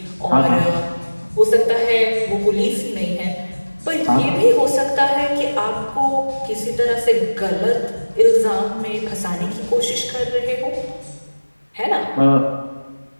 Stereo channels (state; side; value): inverted; both; correlation -1.00